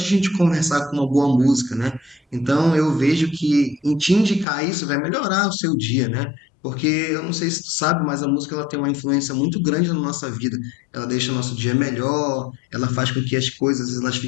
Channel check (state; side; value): drops out; right; at 4.5 s